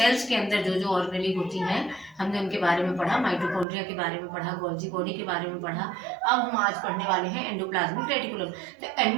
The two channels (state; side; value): drops out; left; at 3.7 s